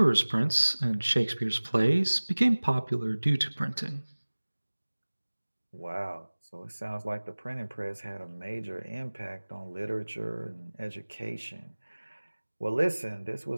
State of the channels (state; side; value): inverted; both; correlation -1.00